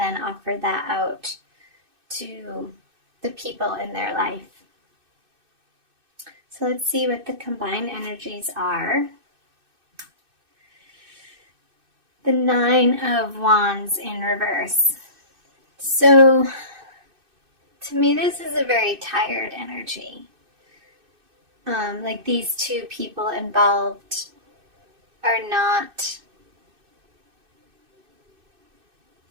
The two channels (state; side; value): late; left; 2.6 ms